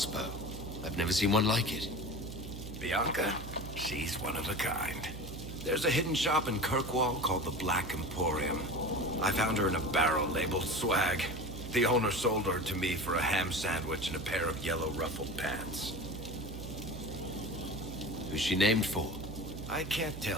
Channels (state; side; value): noise; right; hum, 10 dB below the sound